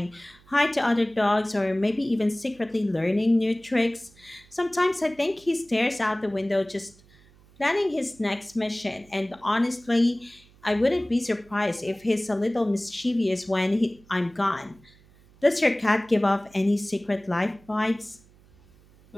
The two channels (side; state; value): right; noise; hum, 28 dB below the sound